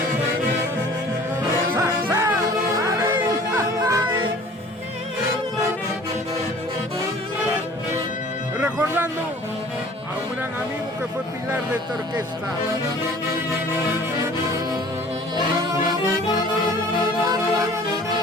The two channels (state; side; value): normal; both; correlation 0.48